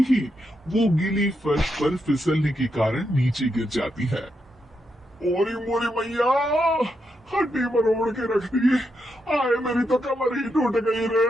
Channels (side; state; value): both; normal; correlation 0.83